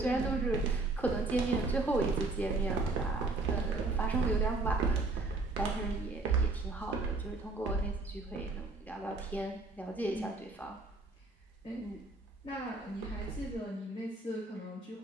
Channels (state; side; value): quieter; left; 3.3 dB